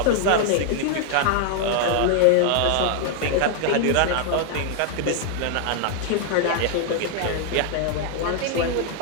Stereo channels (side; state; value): both; different; correlation 0.00